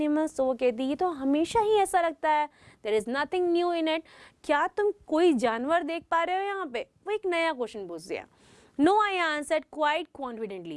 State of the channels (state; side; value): identical; both; correlation 1.00